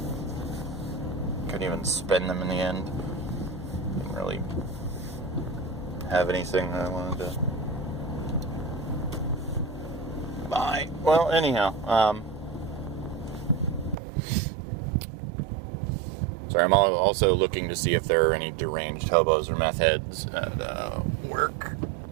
Couldn't even spend them in the end. Didn't really have anything that I wanted to buy. Well, anyhow, sorry, I'm also looking to see if there are any deranged hobos or meth heads at work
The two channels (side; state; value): left; drops out; at 14.0 s